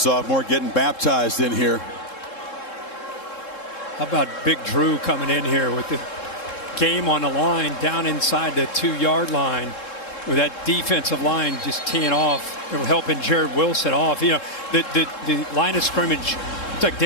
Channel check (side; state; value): right; late; 3.7 ms